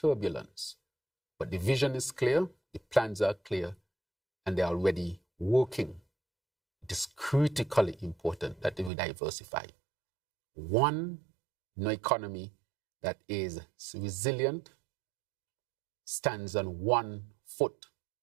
But the vision is clear, the plans are clear, and they're already working. It is critically important that we diversify. One, no economy that is resilient stands on one foot.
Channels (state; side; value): drops out; left; at 8.9 s